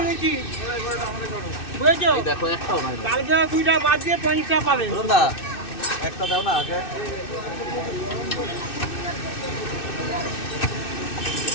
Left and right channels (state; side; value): late; right; 2.6 ms